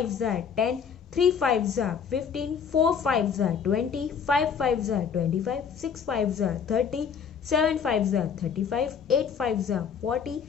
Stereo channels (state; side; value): quieter; right; 7.0 dB